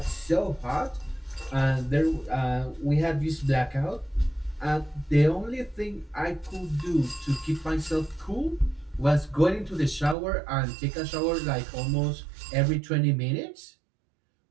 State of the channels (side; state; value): left; drops out; at 10.2 s